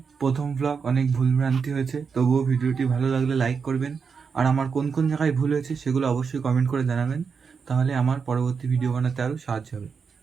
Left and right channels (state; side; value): quieter; left; 5.8 dB